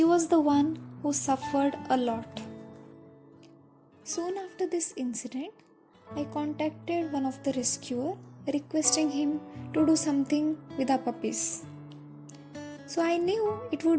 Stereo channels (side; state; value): both; identical; correlation 1.00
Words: was the one who suffered a lot. Soon after this incident, I contacted one of the rescuer requesting him to do something with our puppies. So I knew it